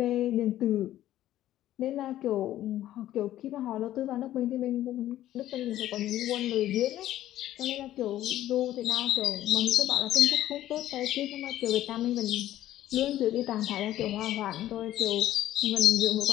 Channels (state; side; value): quieter; right; 13.3 dB